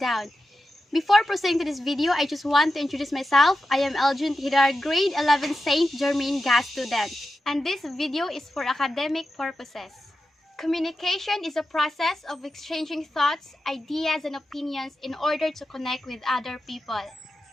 Before proceeding to this video, I just want to introduce myself. I am Eljun Hidar, grade 11 St. Germain GAS student. And this video is for academic purposes. Communication is a process of exchanging thoughts, ideas, and opinions in order to connect with other people.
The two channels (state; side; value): normal; both; correlation 0.91